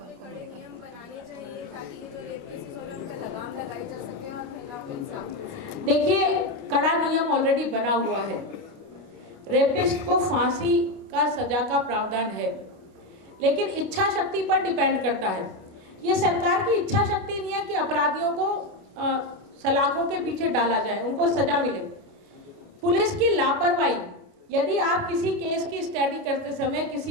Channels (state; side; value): late; left; 29 ms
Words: बनाने चाहिए ताकि जो रेप केसेस हो रहे हैं उनका लगाम लगाई जा सके और महिलाओं को इंसाफ मिल सके। देखिए, कड़ा नियम ऑलरेडी बना हुआ है। रेपिस्ट को फांसी का सजा का प्रावधान है, लेकिन इच्छा शक्ति पर डिपेंड करता है। ये सरकार की इच्छा शक्ति नहीं है कि अपराधियों को सलाखों के पीछे डाला जाए, उनको सजा मिले। पुलिस की लापरवाही, यदि आप किसी केस की स्टडी करते समय,